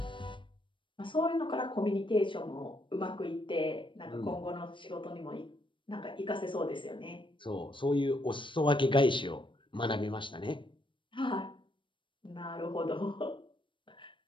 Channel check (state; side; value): late; right; 0.24 ms